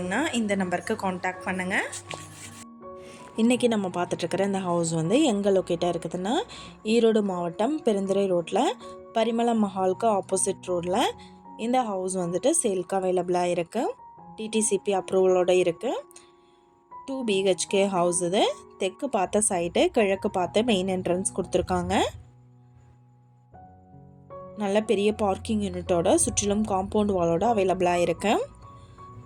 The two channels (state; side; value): identical; both; correlation 1.00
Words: இந்த நம்பருக்கு காண்டாக்ட் பண்ணுங்கள். இன்றைக்கி நம்ம பார்த்துட்ருக்கிற இந்த ஹவுஸ் வந்து எங்கே லொக்கேட்டாக இருக்குதுன்னா, ஈரோடு மாவட்டம் பெருந்துறை ரோட்டில் பரிமளம் மஹாலுக்கு ஆப்போசிட் ரோடில் இந்த ஹவுஸ் வந்துட்டு சேல்க்கு அவைலபிளாக இருக்குது. டிடிசிபி அப்ரூவலோடு இருக்குது. 2 BHK ஹவுஸ். இது தெற்கு பார்த்த சைடு, கிழக்கு பார்த்த மெயின் என்ட்ரன்ஸ் கொடுத்துருக்காங்க. நல்ல பெரிய பார்க்கிங் யூனிட்டோட சுற்றிலும் காம்பவுண்ட் வாலோட அவைலபிளாக இருக்கு.